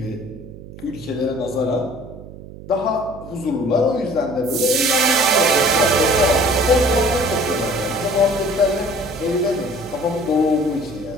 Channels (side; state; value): right; noise; hum, 16 dB below the sound